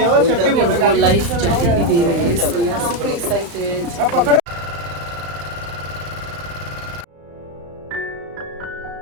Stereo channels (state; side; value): late; left; 35 ms